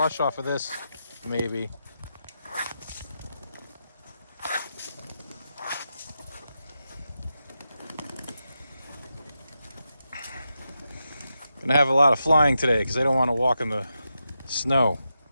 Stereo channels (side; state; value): both; inverted; correlation -0.87